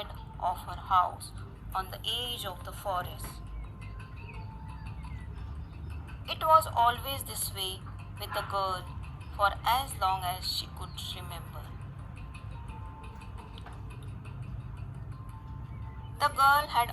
of her house on the edge of the forest. It was always this way with the girl for as long as she could remember. The girl had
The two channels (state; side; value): identical; both; correlation 1.00